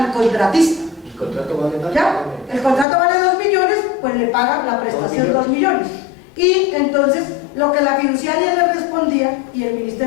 contratista. ¿El contrato vale más? ¿Ya? El contrato vale 2 millones, pues le pagan la prestación 2 millones. Y entonces lo que la fiduciaria le respondía y el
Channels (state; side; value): drops out; right; at 2.9 s